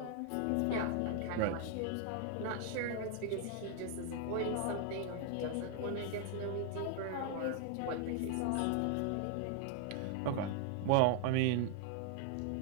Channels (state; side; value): different; both; correlation 0.00